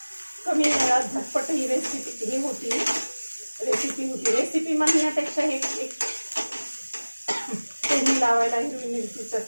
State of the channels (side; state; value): both; inverted; correlation -1.00